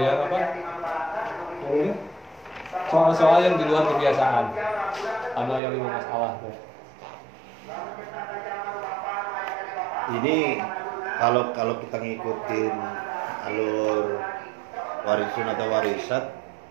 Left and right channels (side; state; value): left; drops out; at 5.6 s